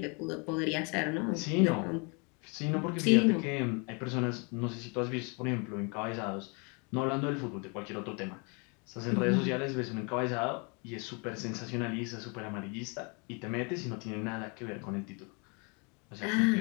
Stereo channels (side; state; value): right; quieter; 33.2 dB